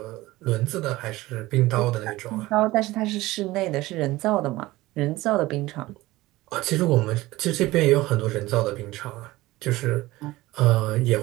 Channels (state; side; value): quieter; left; 18.5 dB